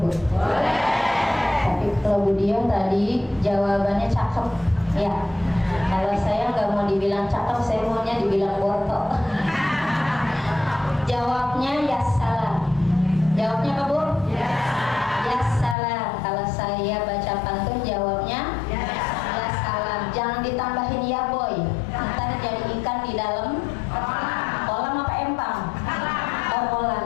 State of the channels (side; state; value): right; drops out; at 15.8 s